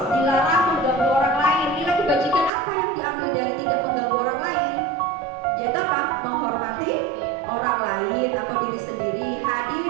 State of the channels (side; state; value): left; drops out; at 2.5 s